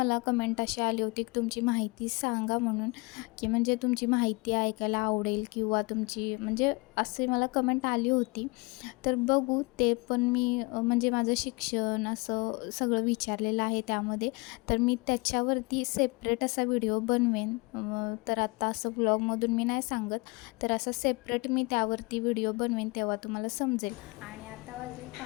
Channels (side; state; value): right; quieter; 27.3 dB